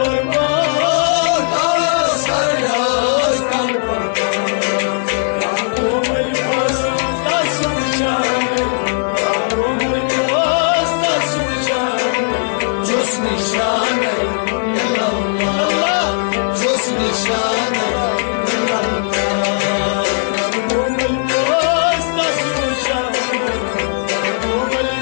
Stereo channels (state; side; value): silent; right; digital silence